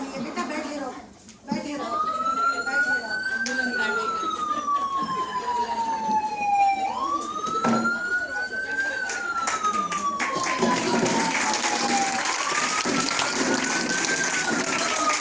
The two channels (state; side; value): identical; both; correlation 1.00